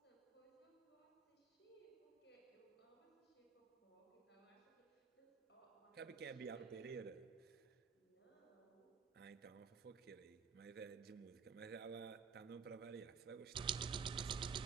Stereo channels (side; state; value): left; quieter; 6.1 dB